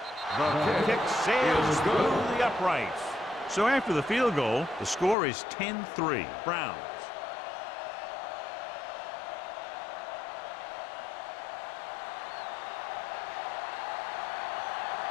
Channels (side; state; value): right; drops out; at 5.2 s